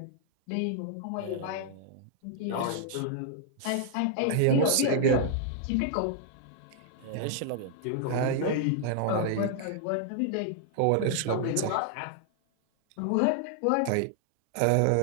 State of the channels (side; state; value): both; different; correlation 0.00